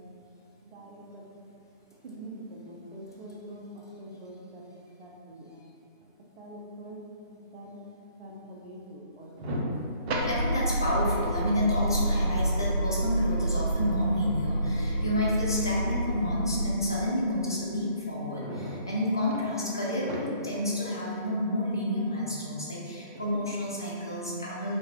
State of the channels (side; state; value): both; inverted; correlation -0.61